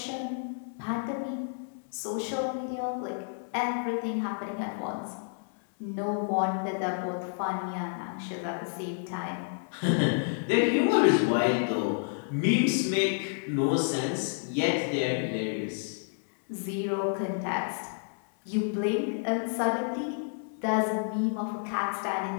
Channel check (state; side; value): silent; right; 58 dB below the other